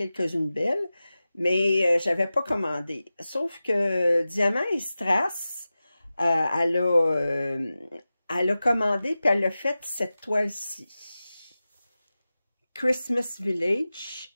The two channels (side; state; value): both; inverted; correlation -0.95